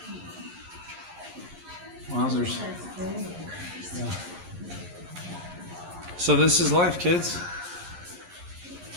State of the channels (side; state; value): left; late; 11 ms